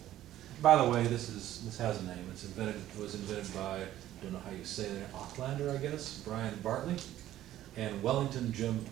By the way, this has a name. It was invented by, I don't know how you say it, Aucklander, I guess, Brian Bartley, and Wellington Jim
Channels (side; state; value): left; quieter; 13.3 dB